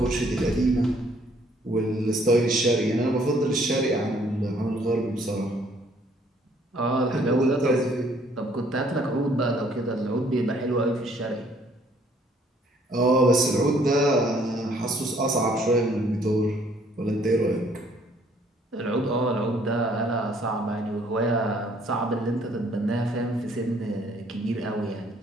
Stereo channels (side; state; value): both; normal; correlation 0.62